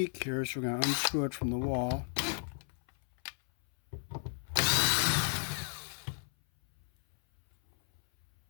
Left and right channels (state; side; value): silent; right; 55 dB below the other